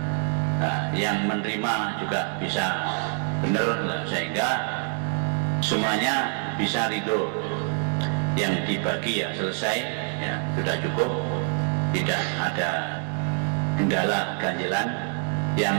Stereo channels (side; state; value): left; quieter; 36.4 dB